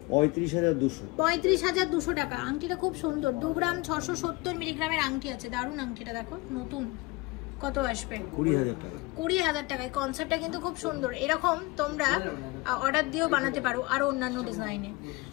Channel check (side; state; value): right; quieter; 23.5 dB